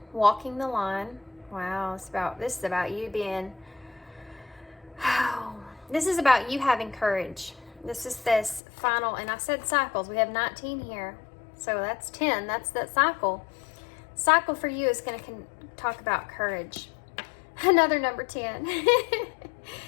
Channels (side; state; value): right; drops out; at 8.6 s